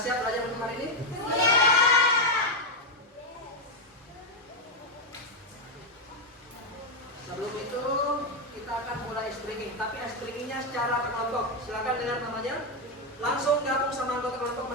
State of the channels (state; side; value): normal; both; correlation 0.04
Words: belajar untuk hari ini? Sebelum itu kita akan mulai speaking, tapi speakingnya secara kelompok. Silakan dengar namanya. Langsung gabung sama anggota kelompok